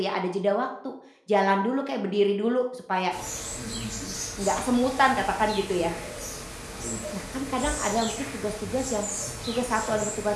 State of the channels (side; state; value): both; identical; correlation 1.00